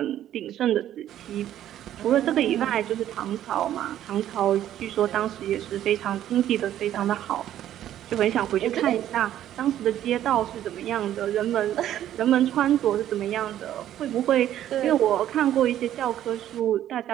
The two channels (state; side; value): quieter; left; 11.8 dB